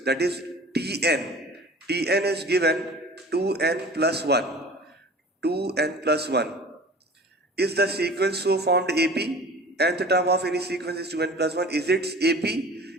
that is Tn. Tn is given 2n plus 1. 2n plus 1. Is the sequence so formed AP? Nth term of any sequence is 2n plus 1. Is it AP?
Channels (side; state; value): both; normal; correlation 0.42